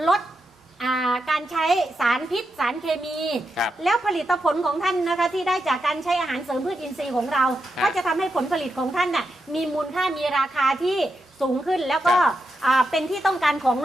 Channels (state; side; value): normal; both; correlation 0.86